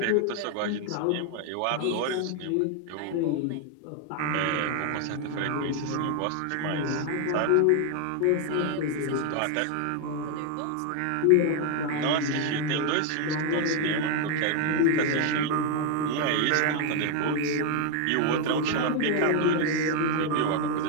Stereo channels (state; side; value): different; both; correlation 0.01